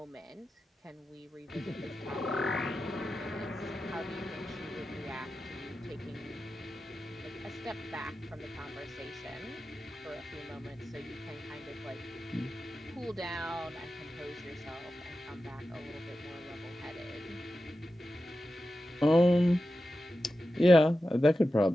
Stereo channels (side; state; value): both; normal; correlation 0.92